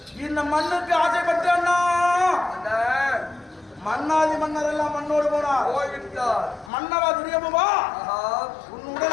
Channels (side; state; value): right; drops out; at 6.7 s